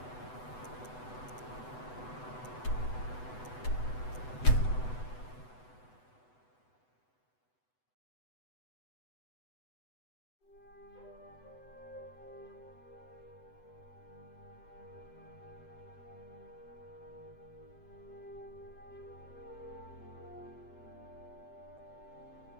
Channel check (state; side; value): late; right; 8.0 ms